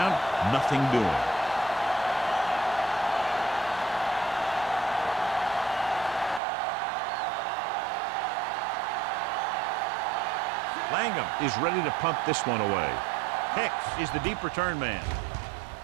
nothing doing. Langham is ready to punt this one away. Hicks is the deep return man.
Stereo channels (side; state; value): left; drops out; at 6.4 s